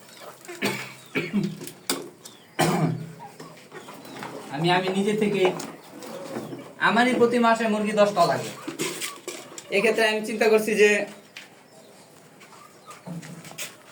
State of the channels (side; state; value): both; identical; correlation 1.00